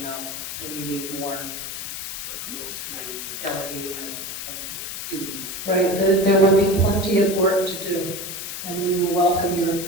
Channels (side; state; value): left; noise; hiss, 6 dB below the sound